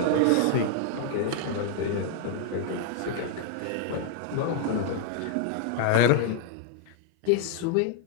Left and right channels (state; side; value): different; both; correlation 0.00